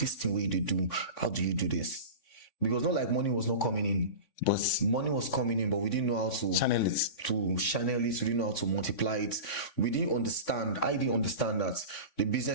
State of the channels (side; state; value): right; late; 3.5 ms